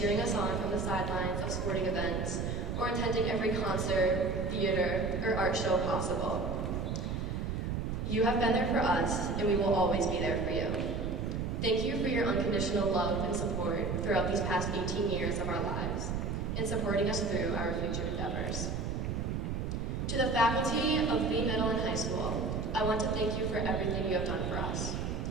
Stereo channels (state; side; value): noise; right; rumble, 2 dB below the sound